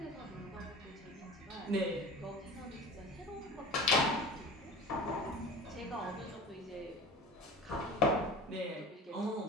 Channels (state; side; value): normal; both; correlation 0.36